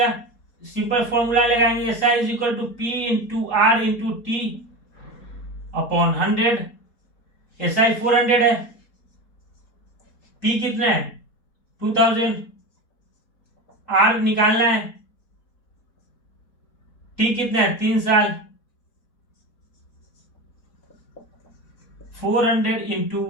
सिंपल फॉर्मूला लगाएंगे, S I is equal to P into R into T upon 100। S I 400 है, पी कितना है 2000, आर निकालना है, टी कितना है 3 साल, 400 इंटू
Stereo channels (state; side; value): late; right; 4.2 ms